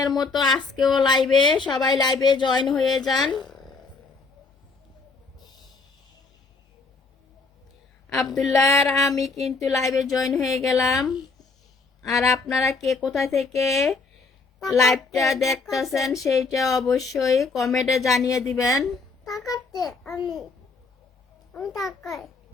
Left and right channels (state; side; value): quieter; right; 4.2 dB